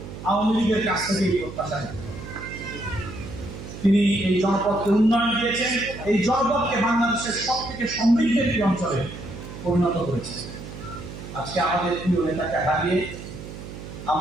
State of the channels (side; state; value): right; noise; hum, 12 dB below the sound